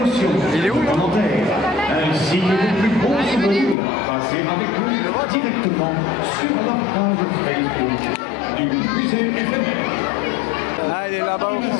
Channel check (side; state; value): right; drops out; at 3.8 s